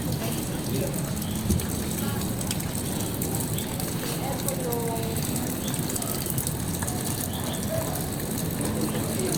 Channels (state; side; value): noise; right; rumble, 15 dB below the sound